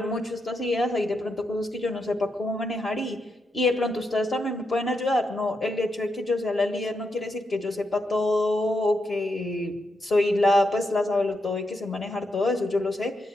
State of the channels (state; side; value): normal; both; correlation 0.83